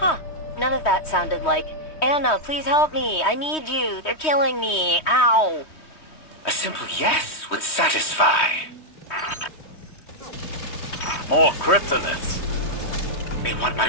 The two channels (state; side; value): late; right; 3.2 ms